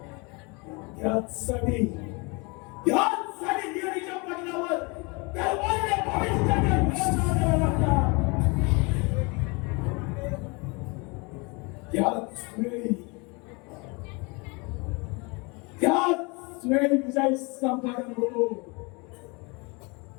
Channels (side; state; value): right; quieter; 29.1 dB